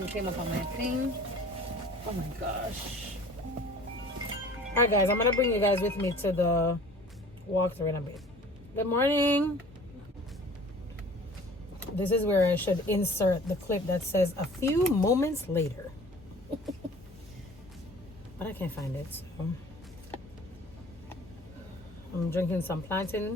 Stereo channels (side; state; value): both; normal; correlation 0.47